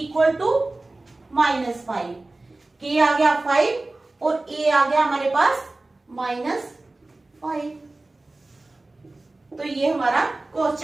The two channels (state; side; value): quieter; left; 3.0 dB